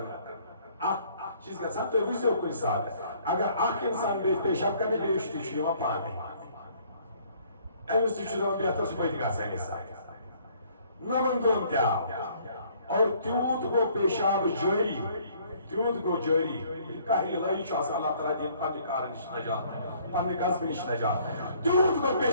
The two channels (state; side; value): inverted; both; correlation -0.60